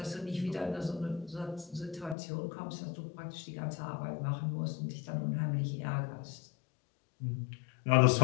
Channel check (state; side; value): drops out; right; at 2.1 s